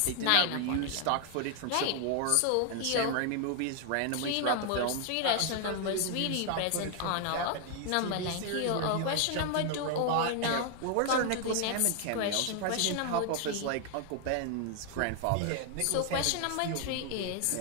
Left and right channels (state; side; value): different; both; correlation 0.00